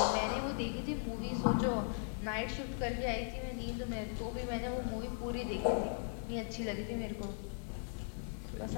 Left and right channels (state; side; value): silent; right; 52 dB below the other